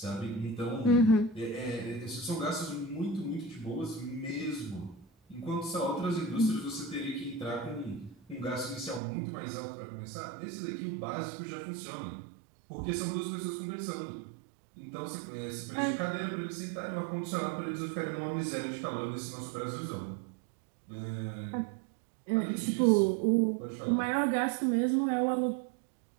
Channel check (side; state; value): left; drops out; at 9.0 s